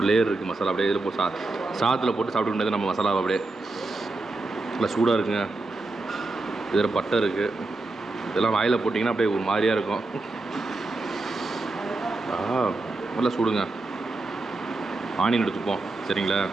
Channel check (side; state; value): left; quieter; 3.2 dB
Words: லேயர் இருக்குது மசாலா. அப்படியே இதில் போட்டு சாதத்தில் போட்டு சாப்பிட்டு முடியாது நம்ம மசாலாவை. அப்படியே நல்லா சூடாக இருக்குங்க. இதில் பட்டை இருக்குது. இதெல்லாம் வாயில் போட்டிங்கன்னா அப்படியே ஒரு மாதிரியாக இருக்கும். நல்லா சூடுங்க. ஆனியன் எடுத்துப்போம், சரிங்களா?